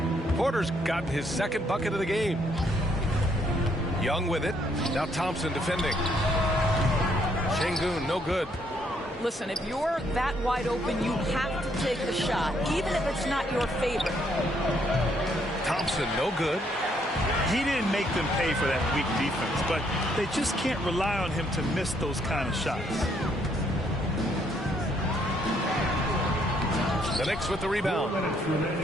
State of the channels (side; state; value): both; normal; correlation 0.70